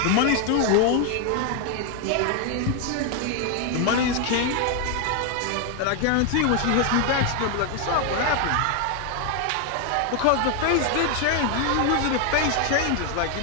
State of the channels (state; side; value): different; both; correlation 0.01